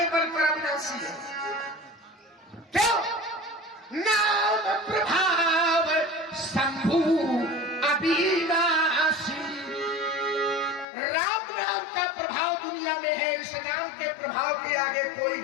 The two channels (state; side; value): drops out; right; at 10.9 s